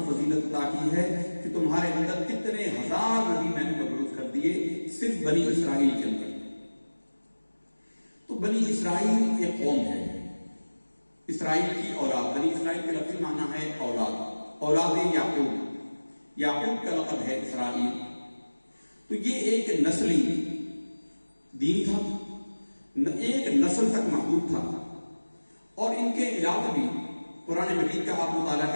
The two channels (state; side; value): inverted; both; correlation -1.00